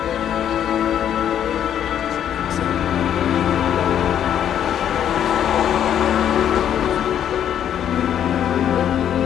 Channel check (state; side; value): quieter; right; 9.7 dB